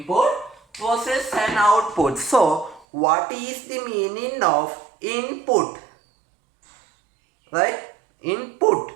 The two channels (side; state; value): left; drops out; at 2.9 s